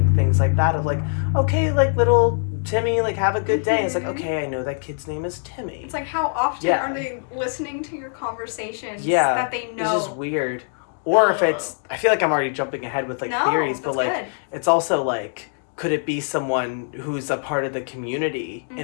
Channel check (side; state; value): right; silent; 64 dB below the other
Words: things like that of, like, okay, like, little Timmy, like, have a good day. It's like, okay, I know that kid's name is Timmy. It's like, how often are they listening to your conversations that they know? It's just weird. Or if it's, I feel like I'm already jumping ahead with, like, theories, but, like, it's also, like, could it be someone who's a part of the community